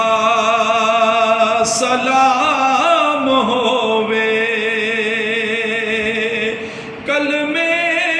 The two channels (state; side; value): identical; both; correlation 1.00